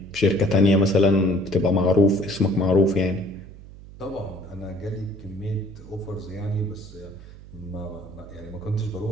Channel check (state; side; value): noise; right; hum, 17 dB below the sound